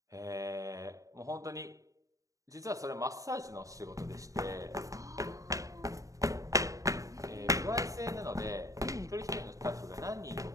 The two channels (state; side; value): late; left; 0.16 ms